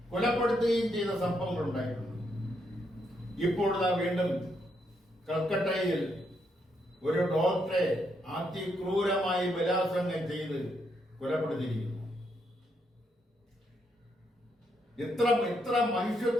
കൊലപ്പെടുത്തുകയും ചെയ്ത സംഭവങ്ങൾ ഉണ്ടായിട്ടുണ്ട്. ഇപ്പോൾ വീണ്ടും കൽക്കട്ടയിൽ ഒരു ഡോക്ടറെ അതിക്രൂരമായി ബലാത്സംഗം ചെയ്ത് കൊലപ്പെടുത്തിയിരിക്കുന്നു. ഇത്ര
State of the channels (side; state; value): both; normal; correlation 0.77